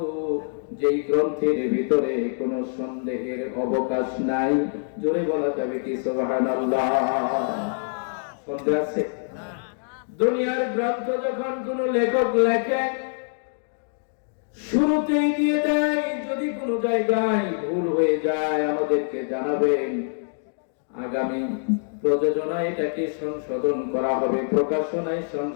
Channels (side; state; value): right; silent; digital silence